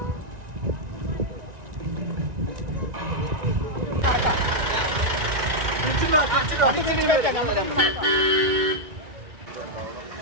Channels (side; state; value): left; late; 1.9 ms